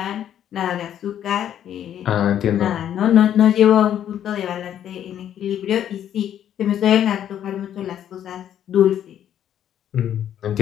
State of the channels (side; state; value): right; quieter; 10.3 dB